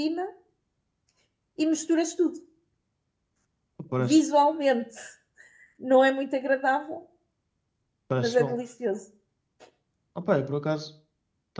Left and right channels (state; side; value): identical; both; correlation 1.00